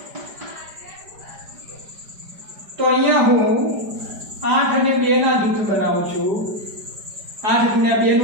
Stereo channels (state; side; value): late; left; 5.0 ms